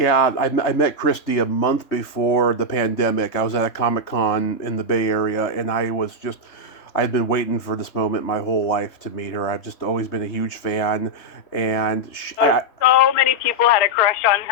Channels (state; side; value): late; right; 3.2 ms